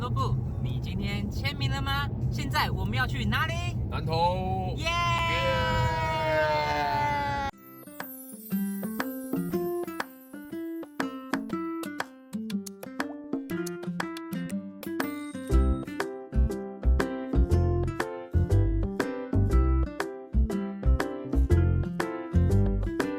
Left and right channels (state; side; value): identical; both; correlation 1.00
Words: 部。你今天签名了吗？现在我们要去哪里？南投。耶！